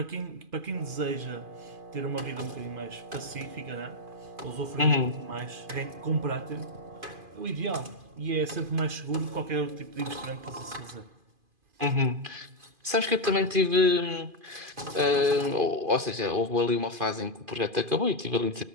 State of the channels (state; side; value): late; left; 2.5 ms